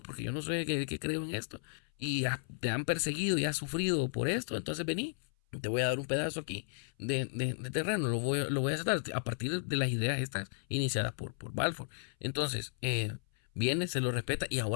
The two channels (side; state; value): right; silent; 55 dB below the other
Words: porque yo no sé que creo en esto, y te han perseguido y has sufrido por esto, entonces vení, te voy a dar un pedazo aquí de terreno, lo voy a aceptar a partir de las ideas estas iniciadas por Balfour. Entonces, viene, se lo respeta, y